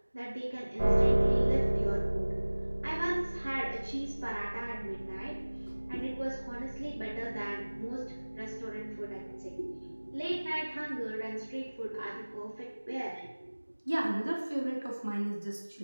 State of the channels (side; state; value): both; inverted; correlation -1.00